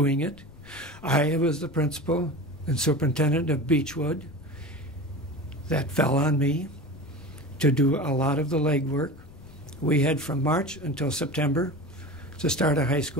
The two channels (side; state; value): left; noise; rumble, 21 dB below the sound